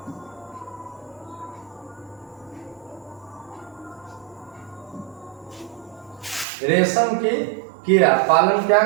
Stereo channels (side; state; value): left; drops out; at 6.5 s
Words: रेशम की कीड़ा पालन क्या